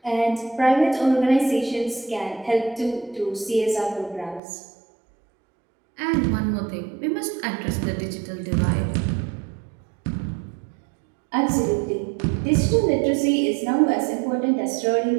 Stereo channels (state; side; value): drops out; left; at 4.4 s